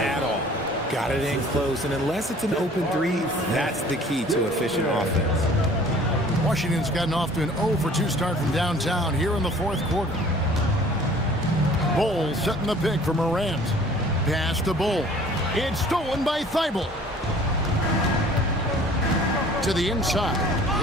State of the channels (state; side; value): normal; both; correlation 0.50